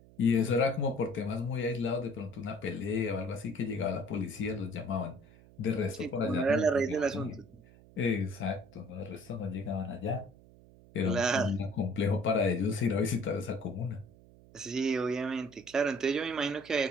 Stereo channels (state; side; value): noise; right; hum, 23 dB below the sound